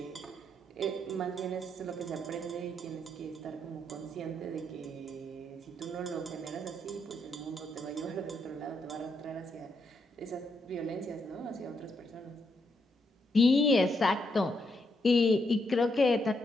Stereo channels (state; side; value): normal; both; correlation 0.78